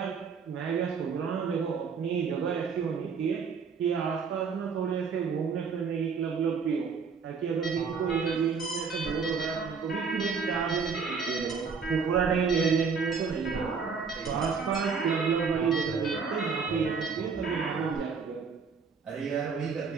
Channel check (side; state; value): left; quieter; 5.6 dB